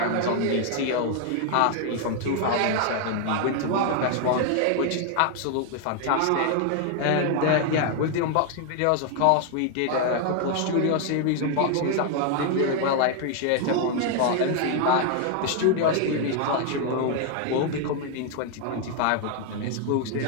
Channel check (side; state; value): both; different; correlation 0.00